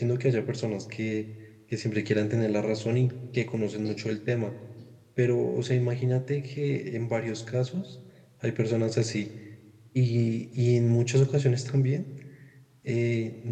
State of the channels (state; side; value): identical; both; correlation 1.00